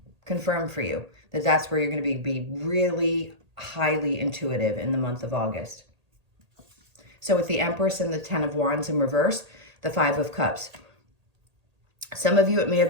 confirm for you that that's where you're going to be really highly intuitive in the month of August. So with the Empress and the Ten of Wands in reverse, the Five of Cups. Some of you, it may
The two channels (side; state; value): left; late; 1.8 ms